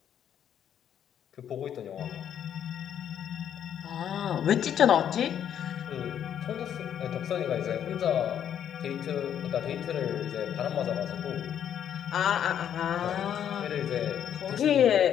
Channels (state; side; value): quieter; right; 9.5 dB